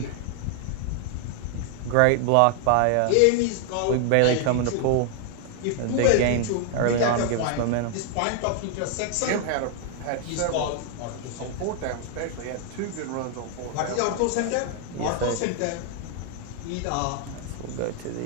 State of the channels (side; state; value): both; different; correlation 0.00